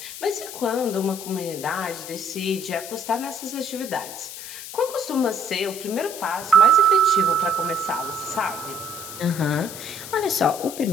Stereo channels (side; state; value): left; noise; hiss, 11 dB below the sound